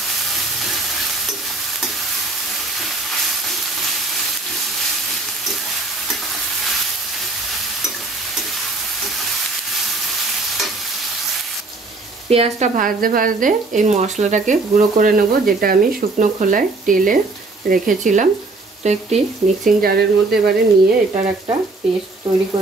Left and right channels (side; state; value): left; quieter; 3.5 dB